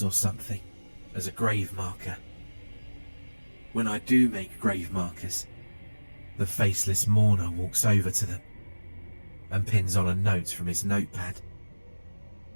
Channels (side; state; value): both; inverted; correlation -1.00